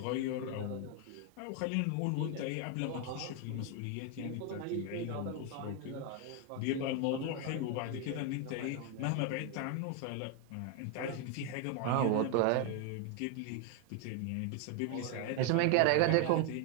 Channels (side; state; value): both; different; correlation 0.01